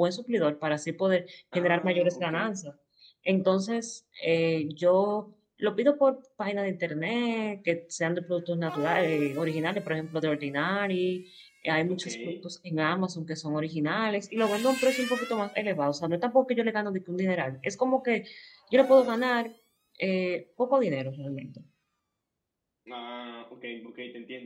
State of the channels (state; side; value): identical; both; correlation 1.00